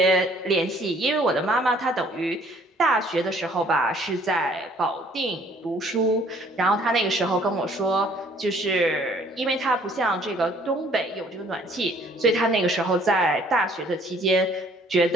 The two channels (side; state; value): both; normal; correlation 0.59